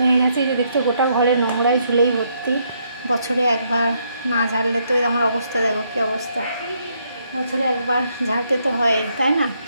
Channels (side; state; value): both; inverted; correlation -0.74